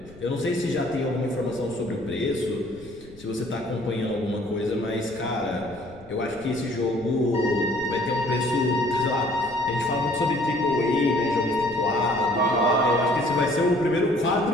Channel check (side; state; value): left; noise; rumble, 22 dB below the sound